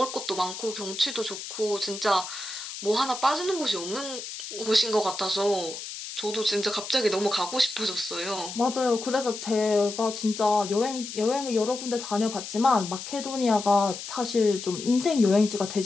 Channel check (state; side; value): noise; left; hiss, 9 dB below the sound